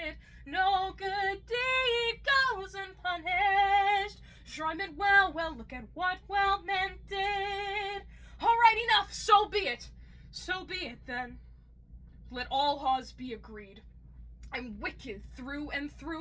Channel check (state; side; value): identical; both; correlation 1.00